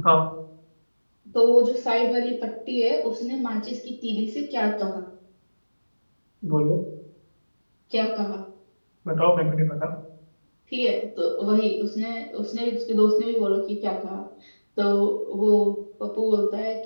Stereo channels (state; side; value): inverted; both; correlation -1.00